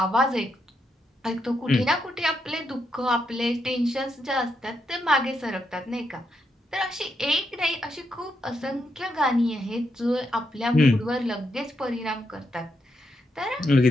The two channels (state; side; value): normal; both; correlation 0.81